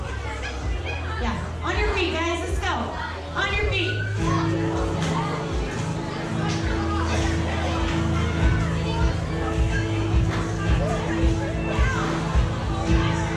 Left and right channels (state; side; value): identical; both; correlation 1.00